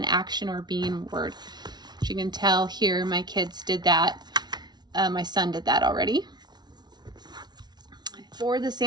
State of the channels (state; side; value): late; left; 0.20 ms